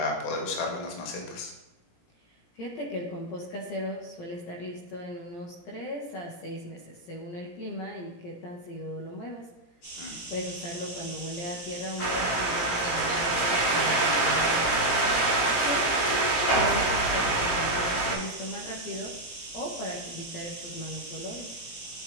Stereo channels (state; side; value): late; right; 17 ms